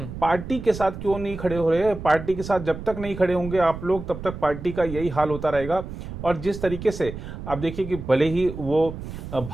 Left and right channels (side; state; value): right; noise; rumble, 10 dB below the sound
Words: पार्टी के साथ क्यों नहीं खड़े हो रहे हैं? पार्टी के साथ जब तक नहीं खड़े होंगे आप लोग, तब तक पार्टी का यही हाल होता रहेगा। और जिस तरीके से आप देखिए कि भले ही वो